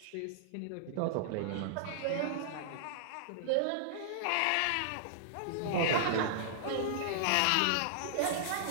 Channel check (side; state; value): both; different; correlation -0.02